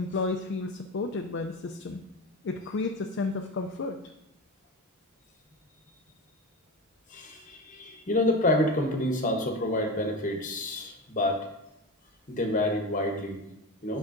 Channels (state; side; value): normal; both; correlation 0.24